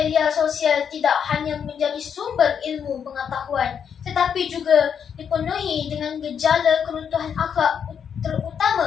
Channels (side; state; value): right; quieter; 7.6 dB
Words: sosial tidak hanya menjadi sumber ilmu pengetahuan, tetapi juga dipenuhi dengan gejala keruntuhan akhlak,